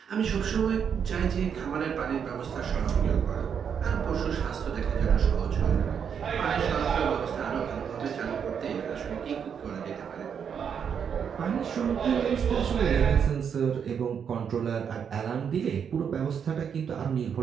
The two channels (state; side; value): quieter; left; 7.4 dB